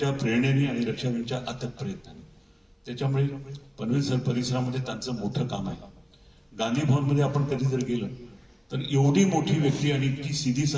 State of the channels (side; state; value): both; identical; correlation 1.00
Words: प्रेरणेने आणि रक्षाबेनच्या अथक प्रयत्नाने. त्याच्यामुळे पनवेल परिसरामध्ये त्यांचं मोठं काम आहे. गांधी भवनमध्ये आपण कधी जर गेलं तर एवढी मोठी व्यक्ती आणि इतकी सीधी